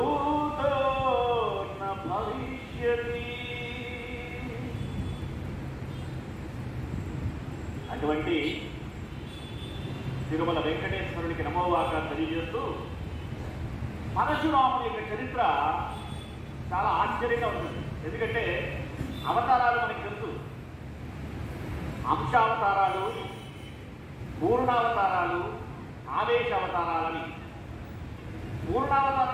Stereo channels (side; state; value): both; identical; correlation 1.00